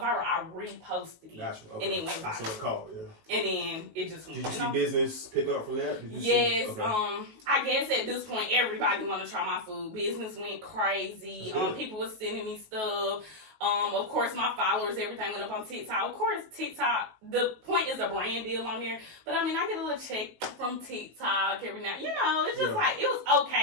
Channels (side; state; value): left; late; 19 ms